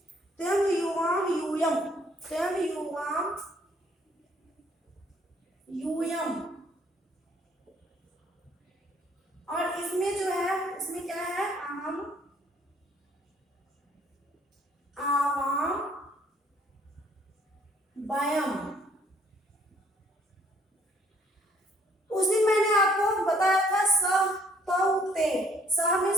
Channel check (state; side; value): normal; both; correlation 0.63